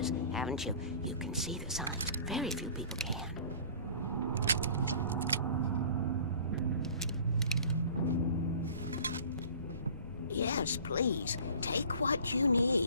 haven't you? You can see the sign. Yes, please. Take what you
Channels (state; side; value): inverted; both; correlation -0.46